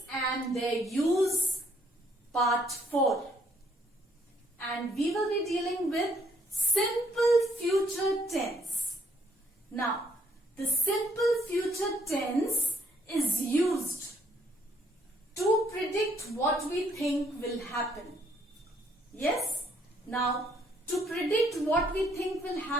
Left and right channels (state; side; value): normal; both; correlation 0.68